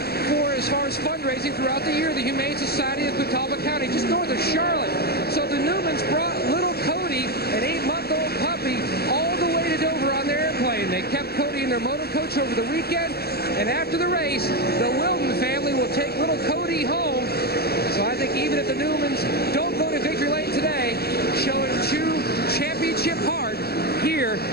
for as far as fundraising throughout the year, the Humane Society of Catawba County, just north of Charlotte. So the Newmans brought little Cody, an 8-month-old puppy, all the way to Dover on their airplane. They kept Cody in their motor coach over the weekend, and after the race, the Wilden family will take little Cody home. So I think even if the Newmans don't go to victory lane today, showing true championship heart here,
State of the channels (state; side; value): late; right; 0.46 ms